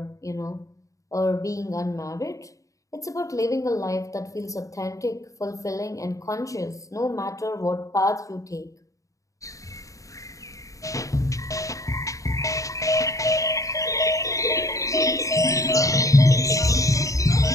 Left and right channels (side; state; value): right; late; 0.16 ms